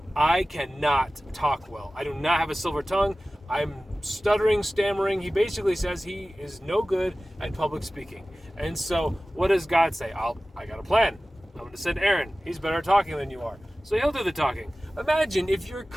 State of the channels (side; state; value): both; normal; correlation 0.96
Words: I cannot talk well. I do not have a silver tongue. I'm stuttering, stammering. He basically says he is no good at public speaking. And so what does God say? I got a plan. I'm going to send Aaron. He's better at talking than you are. So he'll do the talking. Imagine if you're